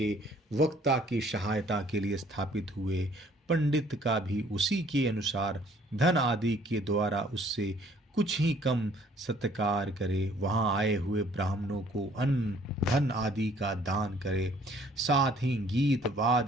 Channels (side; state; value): both; normal; correlation 0.59